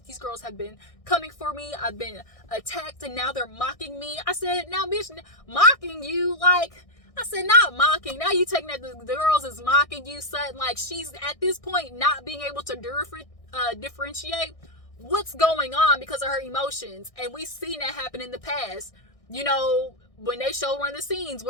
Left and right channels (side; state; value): right; late; 1.6 ms